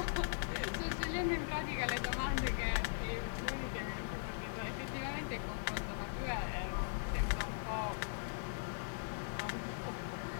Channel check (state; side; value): silent; right; digital silence